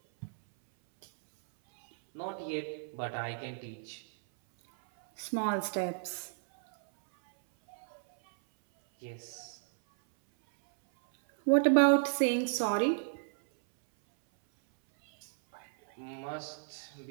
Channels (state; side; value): silent; left; 56 dB below the other